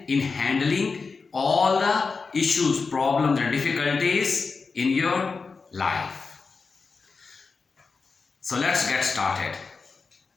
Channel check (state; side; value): quieter; right; 4.6 dB